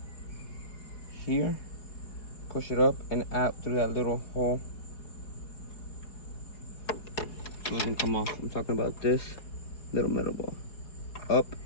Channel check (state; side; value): late; right; 4.8 ms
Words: here. Push it up and out through that little hole. It doesn't come off. I'm talking about this little metal ball. Up